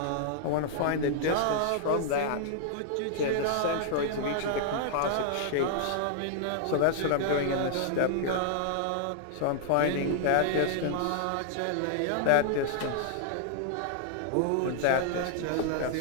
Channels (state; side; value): different; both; correlation -0.01